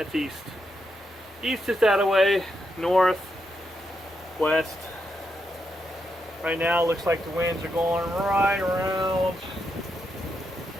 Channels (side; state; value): both; normal; correlation 0.82